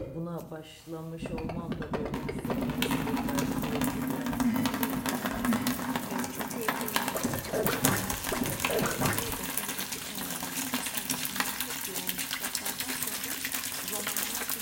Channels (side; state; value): both; identical; correlation 1.00